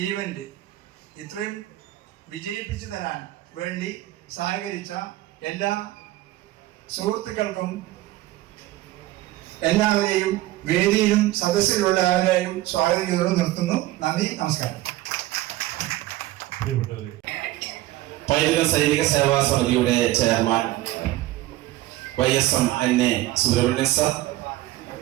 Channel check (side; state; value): left; quieter; 16.6 dB